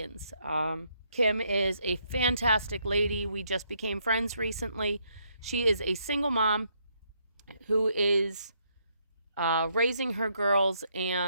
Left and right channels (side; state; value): both; inverted; correlation -0.74